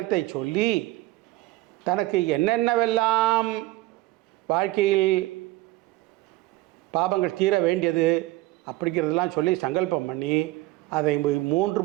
சொல்லி தனக்கு என்னென்னவெல்லாம் வாழ்க்கையில் பாபங்கள் தீர வேண்டியது அப்படிங்கிறதெல்லாம் சொல்லி சங்கல்பம் பண்ணி அதை 3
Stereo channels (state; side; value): quieter; left; 18.1 dB